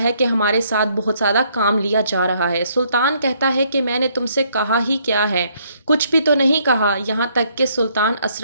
कि हमारे साथ बहुत ज़्यादा काम लिया जा रहा है। सुल्तान कहता है कि मैंने तुमसे कहा ही क्या है, कुछ भी तो नहीं कहा। यहाँ तक कि सुल्तान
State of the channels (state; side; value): inverted; both; correlation -0.68